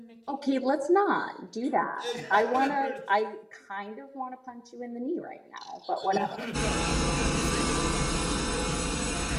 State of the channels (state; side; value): identical; both; correlation 1.00